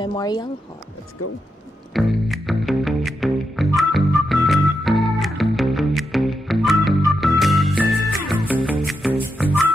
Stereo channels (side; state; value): both; normal; correlation 0.85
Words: Hall. Let's go!